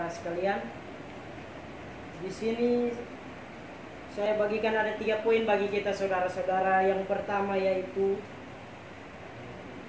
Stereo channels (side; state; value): both; identical; correlation 1.00